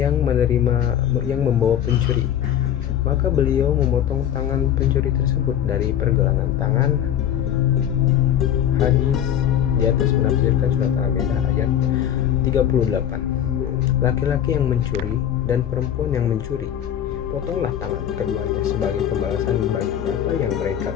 membawa pencuri, maka beliau memotong tangan pencuri tersebut dari pergelangan tangan. Hadis di atas menafsirkan surat Al-Maidah ayat 38. Laki-laki yang mencuri dan perempuan yang mencuri, potonglah tangan keduanya sebagai pembalasan bagi apa yang mereka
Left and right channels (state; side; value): quieter; right; 10.2 dB